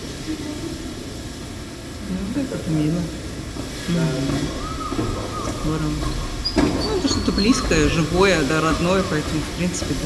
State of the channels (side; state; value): both; identical; correlation 1.00